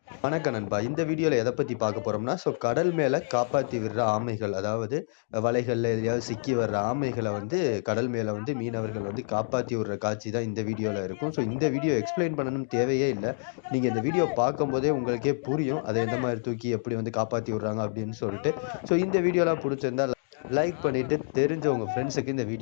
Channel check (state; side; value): silent; right; digital silence